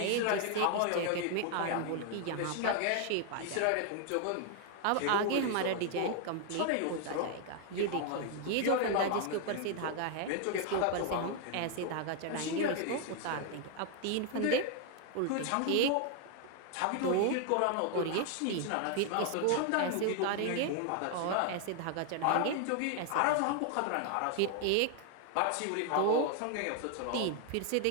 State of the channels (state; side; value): different; both; correlation 0.00